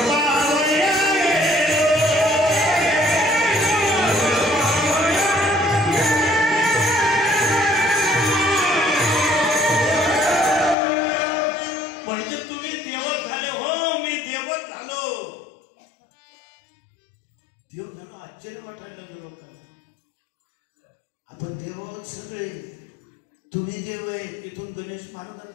आपण देव आहोत सगळे. तुम्ही देव आहे. इथून गणेश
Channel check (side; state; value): right; drops out; at 10.8 s